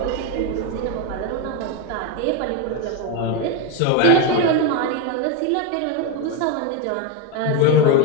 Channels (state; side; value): different; both; correlation 0.02